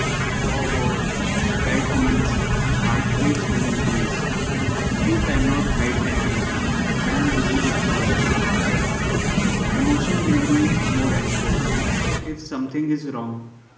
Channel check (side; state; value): both; identical; correlation 1.00